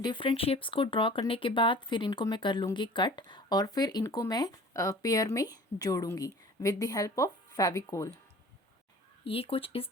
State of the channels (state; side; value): normal; both; correlation 0.45